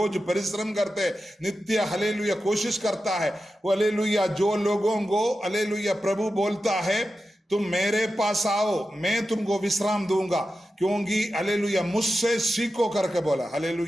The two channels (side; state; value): both; normal; correlation 0.92